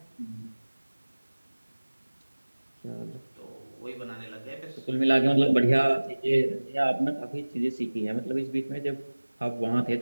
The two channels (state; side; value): inverted; both; correlation -1.00